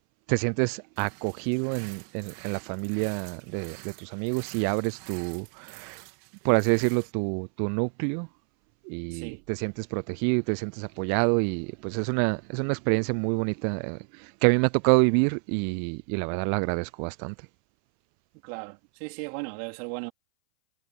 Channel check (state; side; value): silent; left; 60 dB below the other